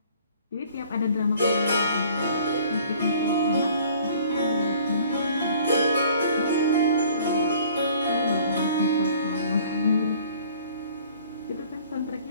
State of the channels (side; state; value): both; inverted; correlation -0.53